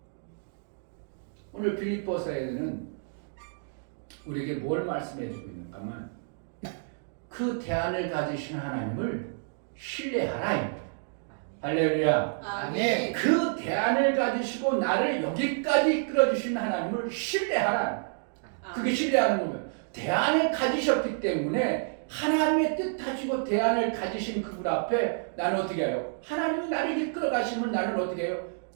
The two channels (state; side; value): silent; left; digital silence